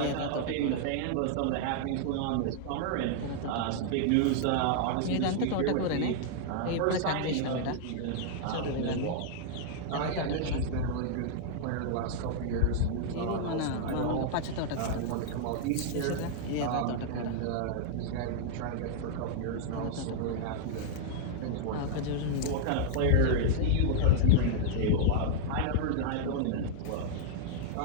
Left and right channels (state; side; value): different; both; correlation -0.01